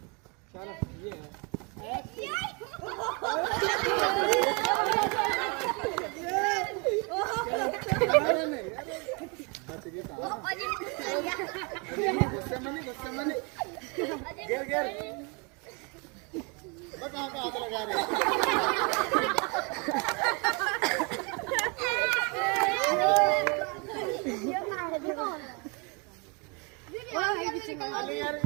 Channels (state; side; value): quieter; left; 32.2 dB